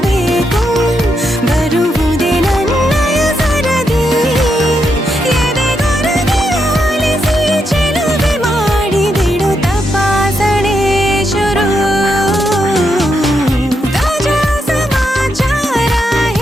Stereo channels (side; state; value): both; normal; correlation 0.81